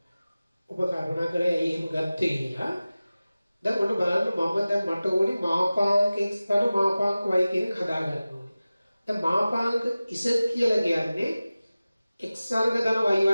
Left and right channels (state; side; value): inverted; both; correlation -0.96